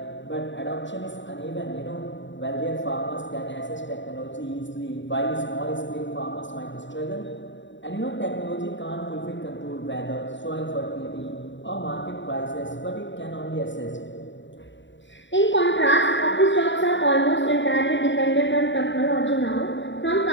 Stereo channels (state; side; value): late; right; 0.54 ms